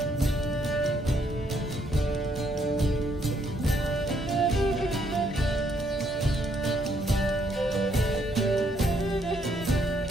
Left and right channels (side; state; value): both; normal; correlation 0.71